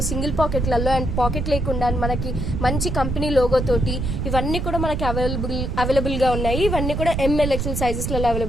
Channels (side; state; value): right; noise; rumble, 2 dB below the sound